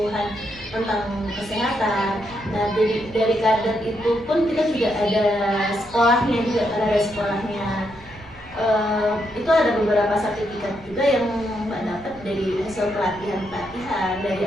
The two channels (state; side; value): noise; right; rumble, 23 dB below the sound